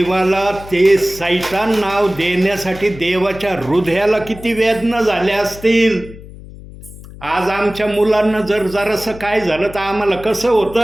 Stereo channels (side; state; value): left; noise; hum, 16 dB below the sound